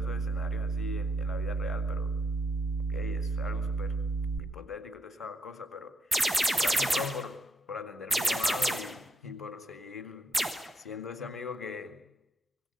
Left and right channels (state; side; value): normal; both; correlation 0.77